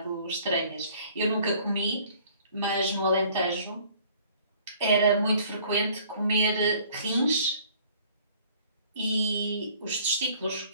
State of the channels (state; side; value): inverted; both; correlation -0.55